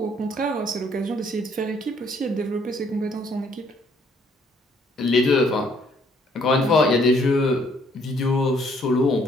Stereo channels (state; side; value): normal; both; correlation 0.65